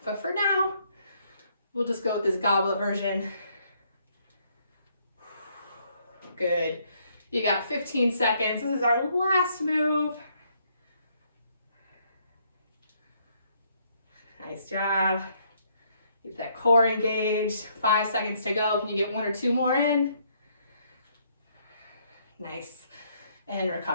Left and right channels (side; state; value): both; inverted; correlation -0.69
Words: But for now, we'll just go with this goblet version. Good. You got 15 seconds. This is our last move. Nice job. Keep that core engaged. 5 seconds to go. Can you get 1 or 2 more in? Nice. And